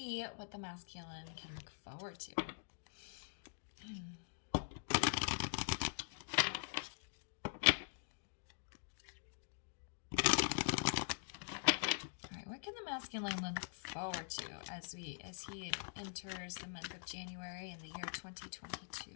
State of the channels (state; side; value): silent; right; digital silence